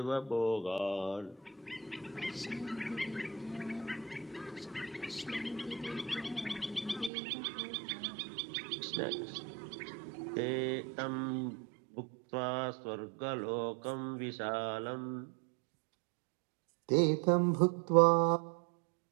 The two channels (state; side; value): drops out; left; at 7.1 s